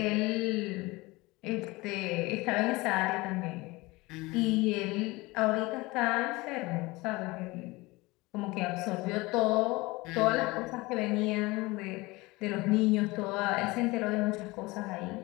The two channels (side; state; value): right; quieter; 22.3 dB